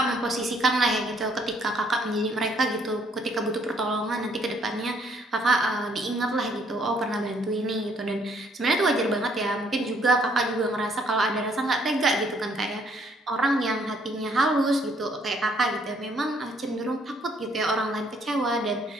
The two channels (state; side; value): normal; both; correlation 0.66